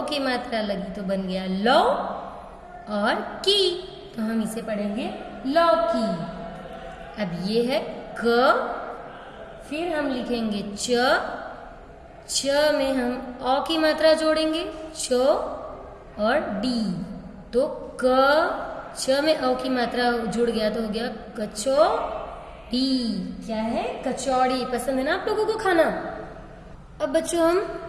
की मात्रा लगी तो बन गया लो और की, तो हम इसे पढ़ेंगे लौकी। अब ये है क, फिर हम लिखेंगे च, च में हम अ की मात्रा जोड़ेंगे, च और डी। तो क च में अ की मात्रा जुड़ गया तो हो गया कचौड़ी। क्या है? कचौड़ी। पसंद है ना आप लोगों को खाना? अब बच्चों हम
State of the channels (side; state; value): both; identical; correlation 1.00